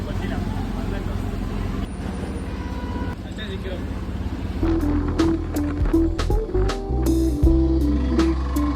ಗೊತ್ತಿಲ್ಲ. ಅಷ್ಟೇ ಸಿಕ್ಕಿರೋದು.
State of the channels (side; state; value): both; identical; correlation 1.00